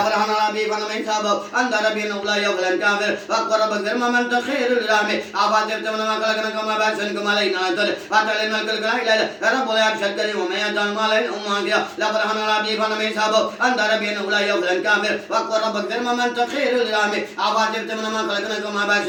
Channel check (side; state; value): both; identical; correlation 1.00